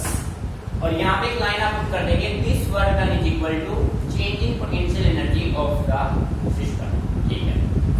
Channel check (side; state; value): both; identical; correlation 1.00